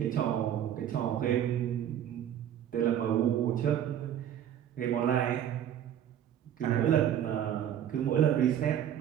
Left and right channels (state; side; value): quieter; left; 10.3 dB